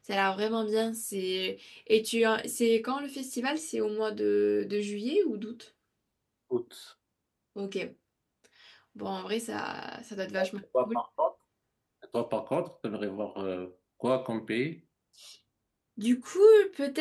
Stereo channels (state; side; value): identical; both; correlation 1.00